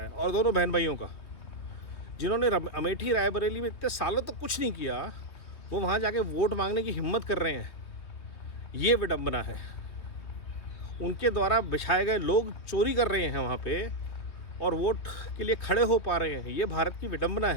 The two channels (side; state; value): right; late; 3.0 ms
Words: है, और दोनों बहन भाइयों का। जिन्होंने अमेठी रायबरेली में इतने सालों तक कुछ नहीं किया, वो वहाँ जाके वोट मांगने की हिम्मत कर रहे हैं। ये विडंबना है। उनके द्वारा बिछाए गए लोग चोरी कर रहे हैं वहाँ पे और वोट के लिए खड़े हो पा रहे हैं। ये भारत की विडंबना